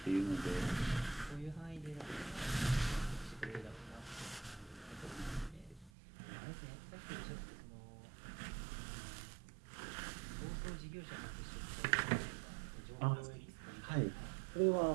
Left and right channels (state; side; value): drops out; left; at 5.9 s